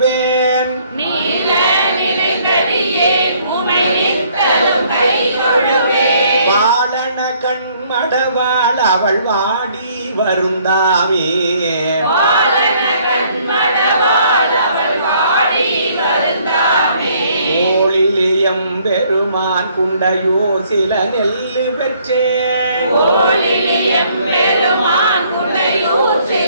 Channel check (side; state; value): both; inverted; correlation -0.63